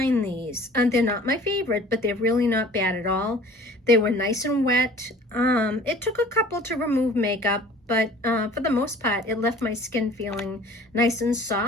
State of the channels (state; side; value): normal; both; correlation 0.48